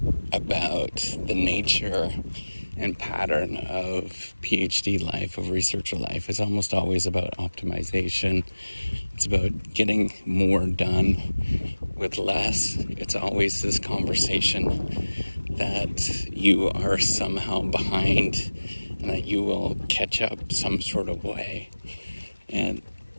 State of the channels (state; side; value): inverted; both; correlation -1.00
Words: about the nature and pattern of PhD life, of researcher life, is almost always about optimization. It's about getting more done with less. It's always this conversation that you are somehow behind and that you will catch up some sort of way. And